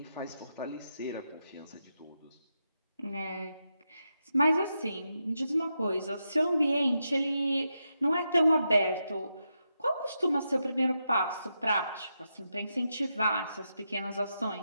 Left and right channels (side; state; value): both; inverted; correlation -0.86